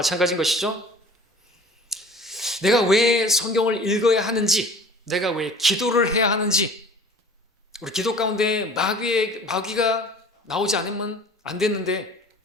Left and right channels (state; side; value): normal; both; correlation 0.45